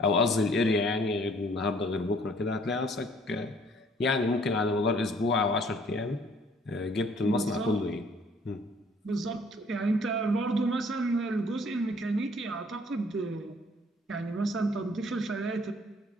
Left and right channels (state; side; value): normal; both; correlation 0.59